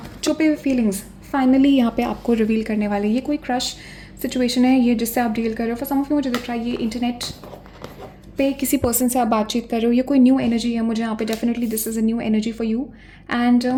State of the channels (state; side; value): identical; both; correlation 1.00